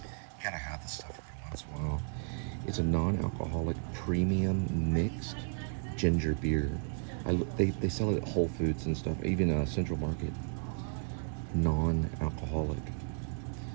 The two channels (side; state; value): left; silent; 55 dB below the other